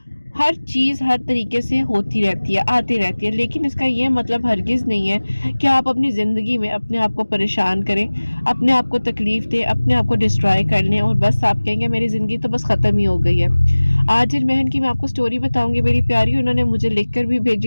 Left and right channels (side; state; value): both; inverted; correlation -1.00